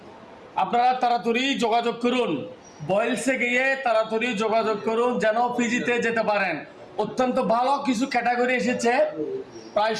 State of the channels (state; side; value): identical; both; correlation 1.00